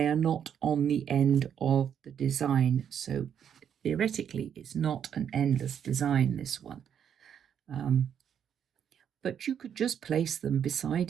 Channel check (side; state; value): left; quieter; 8.5 dB